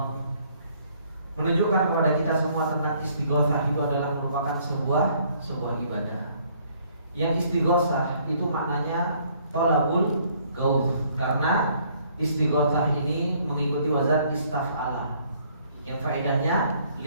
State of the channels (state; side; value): inverted; both; correlation -0.63